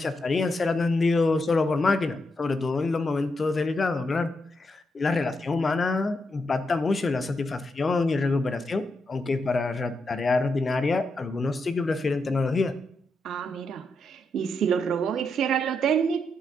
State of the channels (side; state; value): both; normal; correlation 0.83